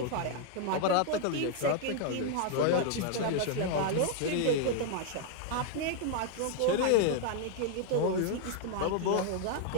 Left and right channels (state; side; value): different; both; correlation 0.00